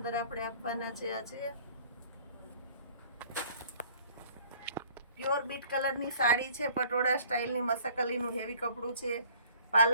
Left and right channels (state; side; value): inverted; both; correlation -0.54